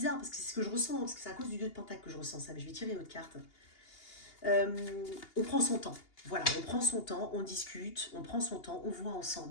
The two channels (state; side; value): late; right; 2.8 ms